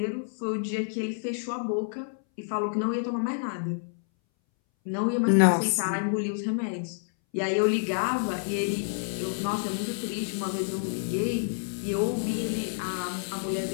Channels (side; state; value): right; silent; 59 dB below the other